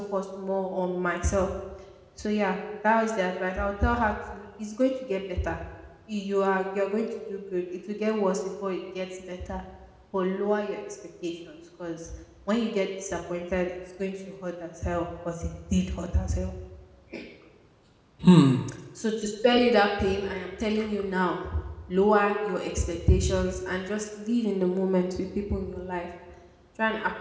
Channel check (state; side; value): identical; both; correlation 1.00